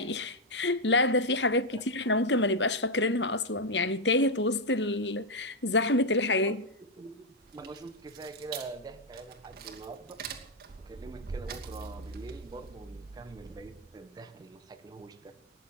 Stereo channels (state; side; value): normal; both; correlation 0.00